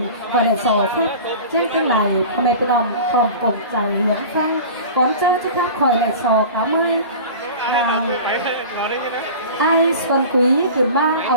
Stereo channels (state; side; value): inverted; both; correlation -0.37